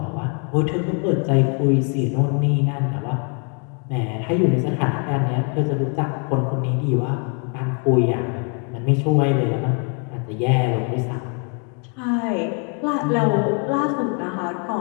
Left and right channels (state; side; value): quieter; right; 39.1 dB